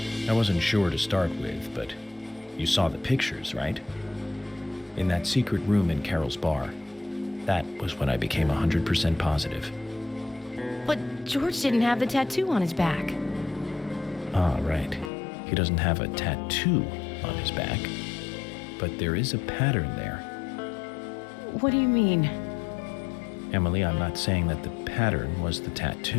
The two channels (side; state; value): right; drops out; at 15.1 s